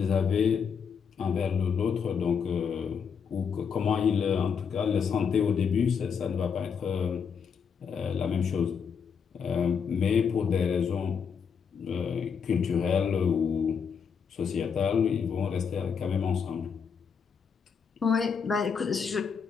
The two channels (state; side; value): quieter; right; 6.5 dB